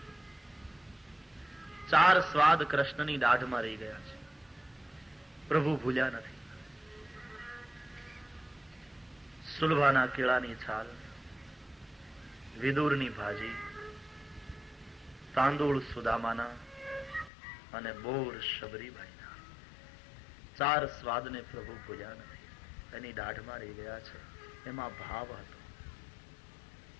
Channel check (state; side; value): drops out; right; at 17.3 s